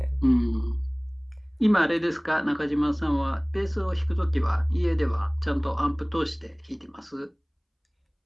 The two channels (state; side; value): identical; both; correlation 1.00